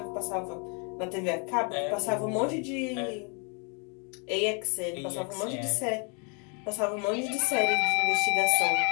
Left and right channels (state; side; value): quieter; right; 36.1 dB